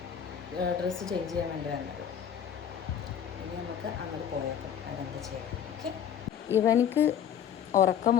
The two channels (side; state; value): right; quieter; 8.9 dB